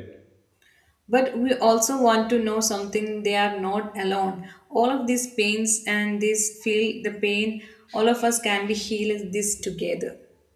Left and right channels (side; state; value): both; identical; correlation 1.00